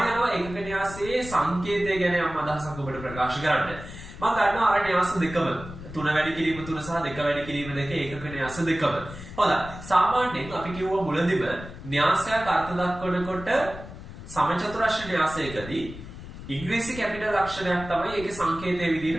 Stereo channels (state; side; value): noise; left; rumble, 13 dB below the sound